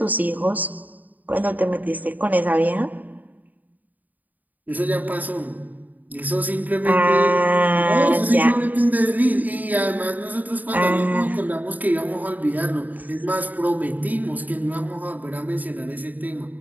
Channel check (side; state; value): left; late; 0.080 ms